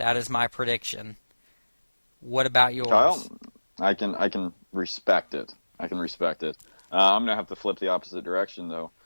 is my prediction. What about yours? Kyle, I can respect it. I'm going to have to flip the opposite direction, though.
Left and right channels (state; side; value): inverted; both; correlation -1.00